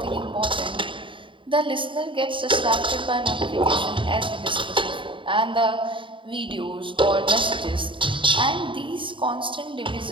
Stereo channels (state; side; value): late; left; 0.24 ms